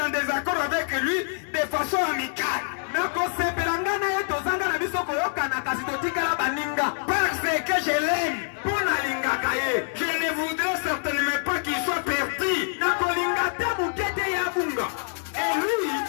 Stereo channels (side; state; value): right; silent; digital silence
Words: en désaccord avec lui de façon amicale. Parce que je l'aime. Je ne voudrais certainement pas qu'il soit perdu. Et lui,